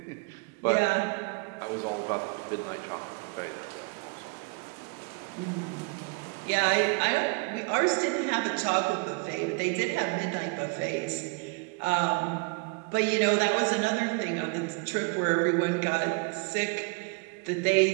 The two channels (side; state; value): left; quieter; 32.9 dB